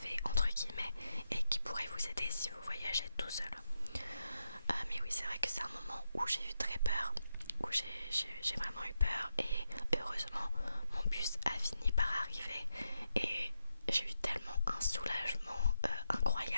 entre guillemets et qui pourraient vous aider si vous voyagez tout seul. Mais oui c'est vrai que c'est un moment où j'ai eu très peur, où j'ai vraiment eu peur et heureusement mon bus a fini par arriver et j'ai eu tellement un soulagement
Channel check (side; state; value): both; inverted; correlation -0.85